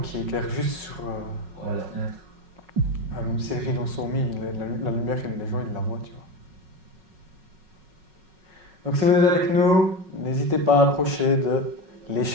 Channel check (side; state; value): left; late; 5.4 ms